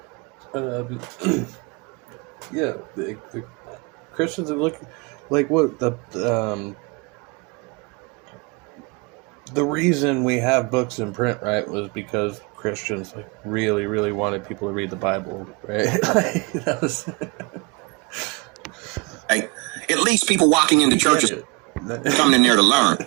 Yeah, the Christians are looking like what the reason we have books in print, right, was because Christians like really, really wanted people to read the Bible, right? Like, that was at least people walking into churches coming in there to learn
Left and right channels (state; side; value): quieter; left; 29.1 dB